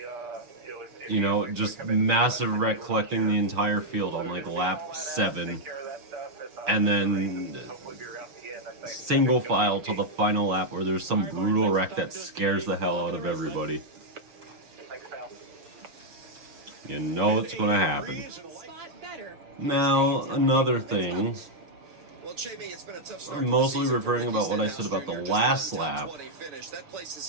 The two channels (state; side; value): late; left; 6.4 ms